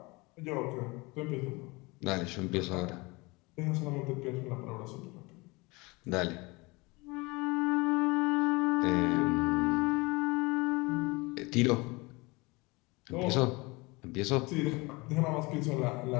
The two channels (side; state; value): right; quieter; 25.0 dB